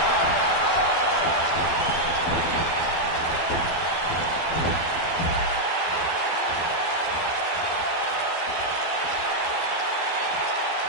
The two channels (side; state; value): right; late; 12 ms